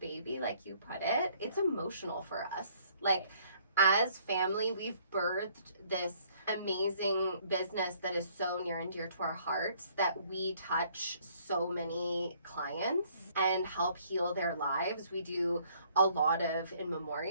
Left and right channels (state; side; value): inverted; both; correlation -0.63